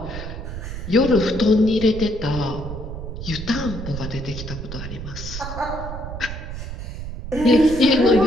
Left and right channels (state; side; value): noise; right; rumble, 8 dB below the sound